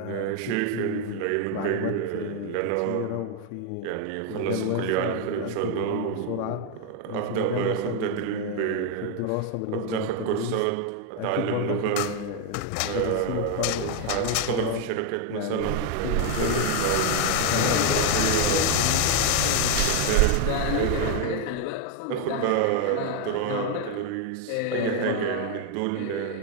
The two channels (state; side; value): different; both; correlation 0.01